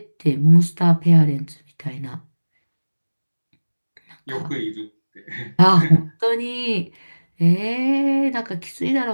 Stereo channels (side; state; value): both; inverted; correlation -1.00